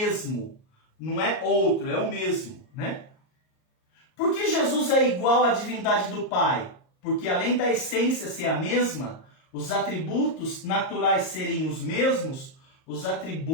Não é outro, é o mesmo, né? Por que Jesus é igual à divindade do Pai? porque além da essência ser a mesma, os atributos naturais serem os mesmos, os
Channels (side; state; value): right; late; 38 ms